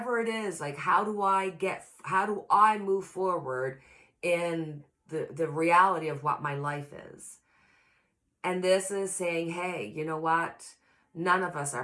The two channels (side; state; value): both; identical; correlation 1.00